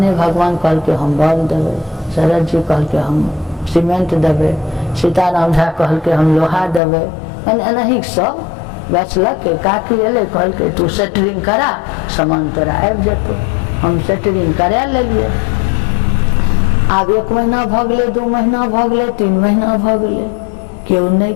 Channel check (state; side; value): drops out; right; at 6.8 s